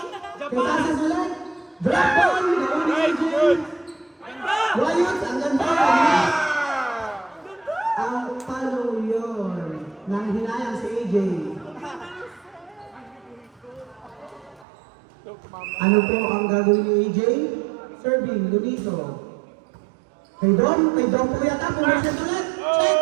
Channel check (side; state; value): left; drops out; at 14.7 s